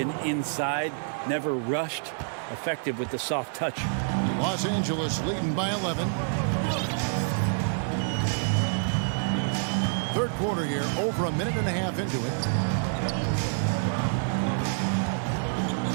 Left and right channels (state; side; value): silent; left; digital silence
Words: inside, never rushed. Effective with the soft touch. Los Angeles leading by 11. Third quarter here, over a minute and a half into it.